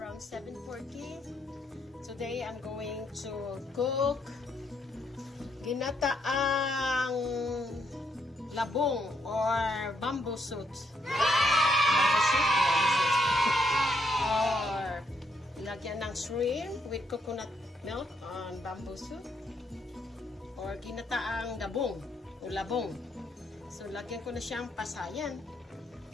around 7:40. Today I'm going to cook ginataang labong or bamboo shoot. Or lagyan ng shrimp with coconut milk on bamboo soup. Or ginataang labong o labong. So lagyan ko na siyang pasayan.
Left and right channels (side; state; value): both; normal; correlation 0.75